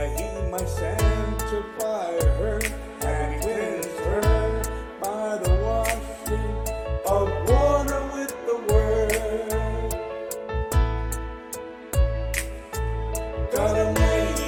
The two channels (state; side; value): identical; both; correlation 1.00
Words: He might sanctify her and cleanse her by the washing of water with the word. God